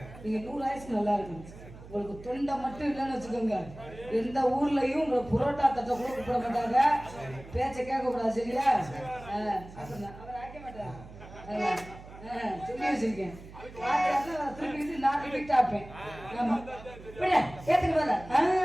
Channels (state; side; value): noise; right; hum, 17 dB below the sound